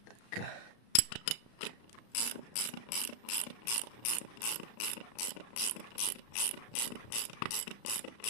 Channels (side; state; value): right; late; 35 ms